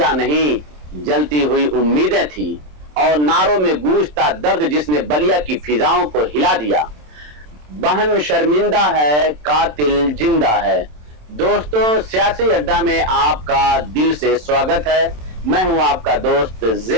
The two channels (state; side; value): late; left; 27 ms